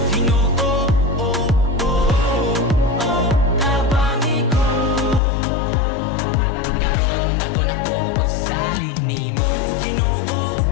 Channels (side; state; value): right; drops out; at 5.2 s